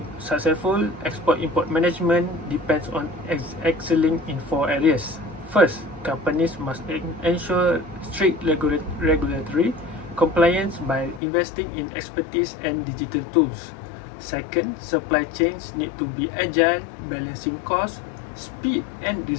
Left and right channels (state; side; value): drops out; right; at 11.2 s